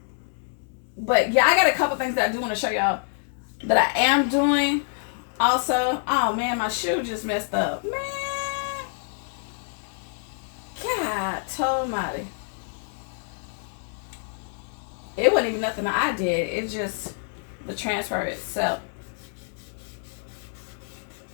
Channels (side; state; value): right; silent; digital silence